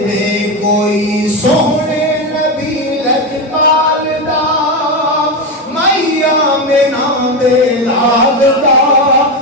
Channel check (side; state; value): both; normal; correlation 0.13